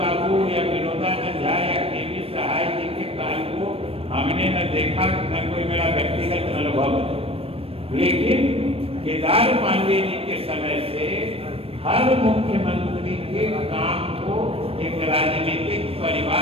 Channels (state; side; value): late; left; 0.28 ms